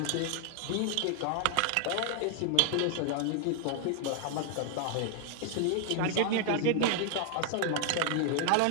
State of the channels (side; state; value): both; different; correlation 0.00